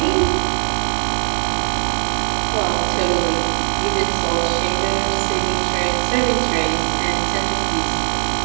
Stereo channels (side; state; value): left; silent; digital silence